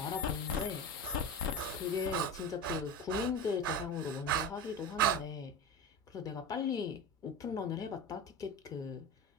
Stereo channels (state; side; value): normal; both; correlation 0.26